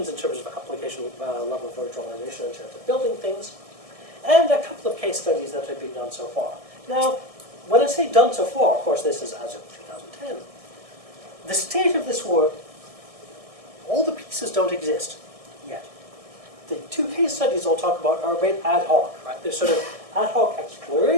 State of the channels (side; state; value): left; late; 1.6 ms